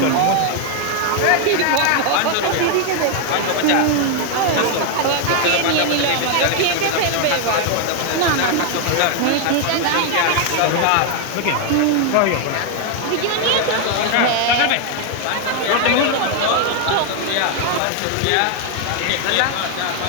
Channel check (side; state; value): both; different; correlation 0.01